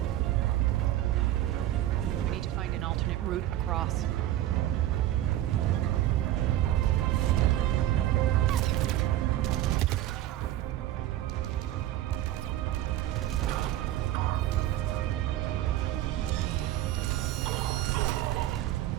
We need to find an alternate route across.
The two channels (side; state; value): left; quieter; 13.6 dB